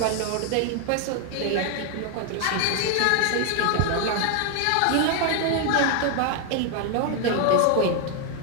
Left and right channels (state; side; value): different; both; correlation 0.00